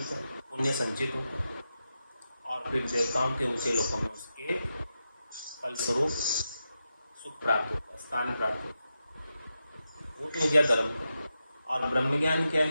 हैं, पुण्य संचित होते हैं और फिर देवताओं के ऊंचे लोकों में उसके फलस्वरूप सुख प्राप्त होता है, स्थान प्राप्त होता है। वो तो हो गया धर्म। और ब्रह्म ज्ञान क्या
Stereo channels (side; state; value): both; inverted; correlation -0.89